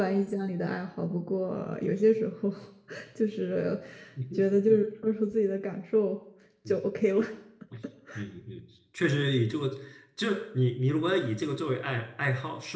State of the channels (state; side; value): identical; both; correlation 1.00